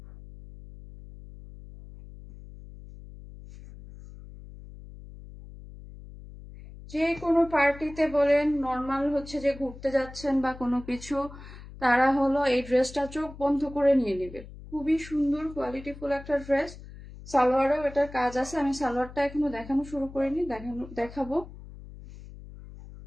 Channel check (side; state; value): left; noise; hum, 16 dB below the sound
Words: যে কোনো পার্টিতে বলেন, নর্মাল হচ্ছে যে ঘুরতে যাচ্ছেন বা কোনো কিছু, তারা হলো এই ড্রেসটা চোখ বন্ধ করে নিয়ে নেবে। খুবই সুন্দর কোয়ালিটিফুল একটা ড্রেস। সালোয়ারেও এটার কাজ আছে। আমি সালোয়ারটা এখনো দেখানো শুরু করিনি, দেখাবো।